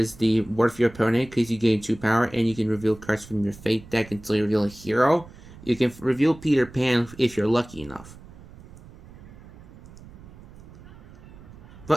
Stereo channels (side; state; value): right; noise; rumble, 19 dB below the sound